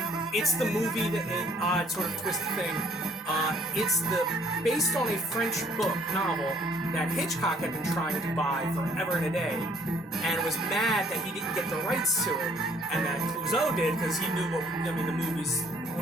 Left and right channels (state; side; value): normal; both; correlation 0.61